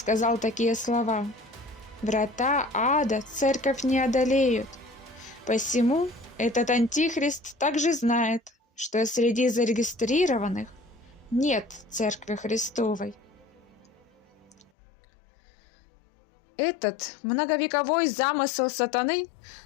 такие слова: «Врата ада Церковь не одолеют». Посему этот антихрист также знает, что среди зарегистрированных нет Церкви Христовой. Этот многовековой замысел сатаны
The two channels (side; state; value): right; drops out; at 14.7 s